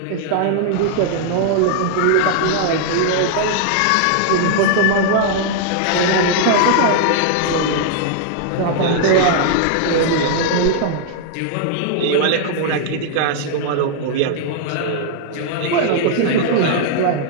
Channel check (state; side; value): different; both; correlation -0.01